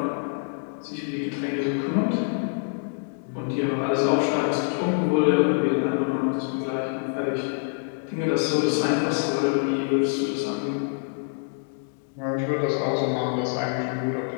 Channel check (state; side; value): silent; right; digital silence